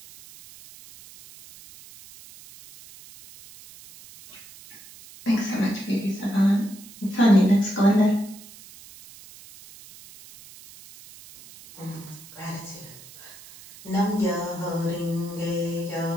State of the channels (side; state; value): right; noise; hiss, 19 dB below the sound